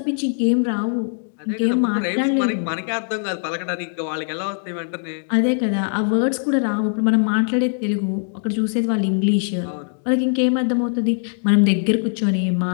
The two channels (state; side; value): silent; right; digital silence